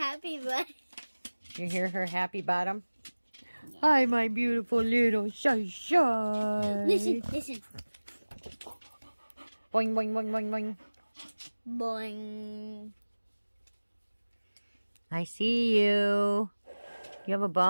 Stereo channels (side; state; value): both; inverted; correlation -1.00